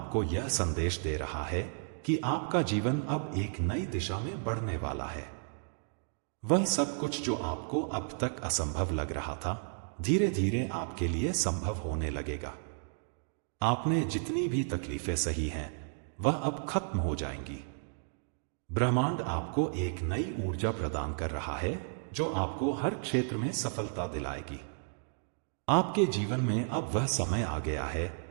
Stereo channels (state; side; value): silent; left; digital silence